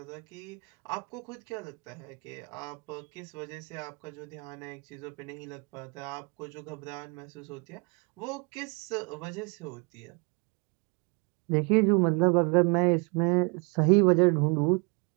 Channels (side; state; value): left; quieter; 32.4 dB